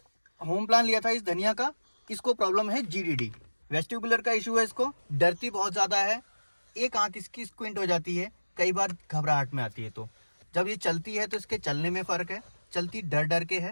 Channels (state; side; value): inverted; both; correlation -1.00